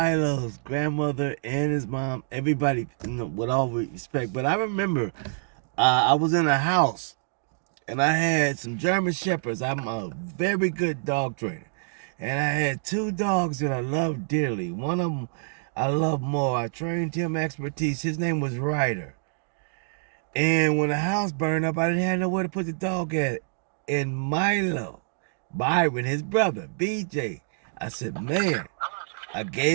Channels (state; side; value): silent; left; digital silence